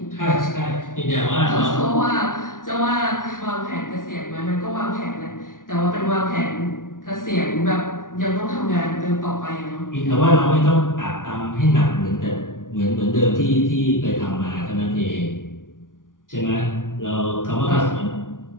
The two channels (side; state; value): right; late; 0.89 ms